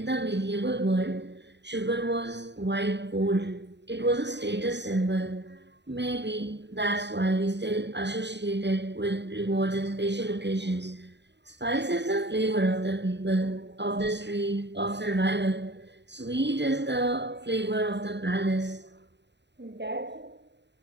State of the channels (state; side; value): late; left; 0.51 ms